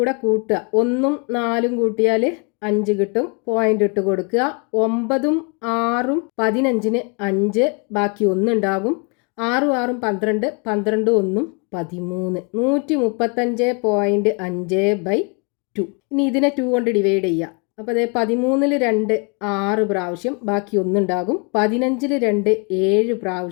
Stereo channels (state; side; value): quieter; right; 34.4 dB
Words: കൂട്ടുക. 1ഉം 4ഉം കൂട്ടിയാൽ 5 കിട്ടും. പോയിന്റ് ഇട്ട് കൊടുക്കുക. 9ഉം 6ഉം 15ന് 5, ബാക്കി 1 ഉണ്ടാകും. 6ഉം 6ഉം 12, 12ഉം 1ഉം 13. 135.5/2. ഇനി ഇതിനെ 2 കൊണ്ട് ഡിവൈഡ് ചെയ്യുക. അപ്പോൾ 13ൽ 2 6 പ്രാവശ്യം, ബാക്കി 1 ഉണ്ടാകും. 15ൽ 2 7